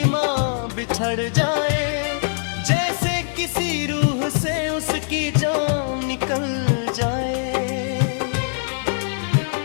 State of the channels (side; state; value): right; silent; 64 dB below the other